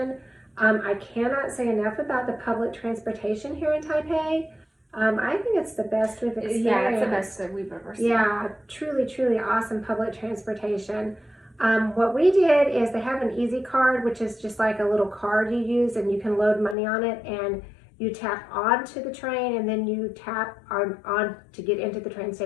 I cannot say enough about the public transportation here in Taipei. I think it's the best we've experienced. Yeah, it's the best that we've ever seen. Yeah, truly, truly awesome public transportation. What we did is they have an easy card, which is just like a little card you use, and you can load money on it, and you tap onto the train, and then you tap on to get into the train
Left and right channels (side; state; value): right; drops out; at 16.8 s